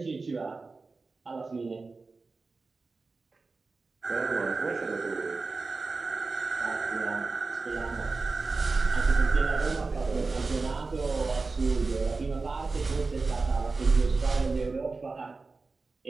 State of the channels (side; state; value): left; quieter; 3.9 dB